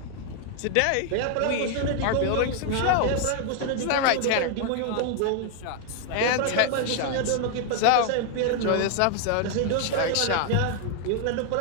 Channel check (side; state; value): both; different; correlation 0.00